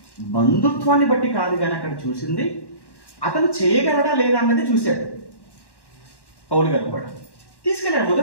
బంధుత్వాన్ని బట్టి కాదు కానీ అక్కడ చూసింది అతను చేయగలడా లేదా అన్నది చూశాడు. పౌలు గారు కూడా తీసుకెళ్ళాడు,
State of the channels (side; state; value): right; late; 1.1 ms